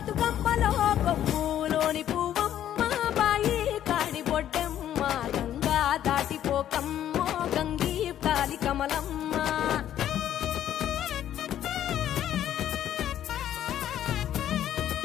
కొమ్ములోని పువ్వమ్మ బాయి కాడి బొడ్డమ్మ గంగా దాటిపోకమ్మో గంగీతాలి కమలమ్మ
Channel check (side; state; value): right; quieter; 11.2 dB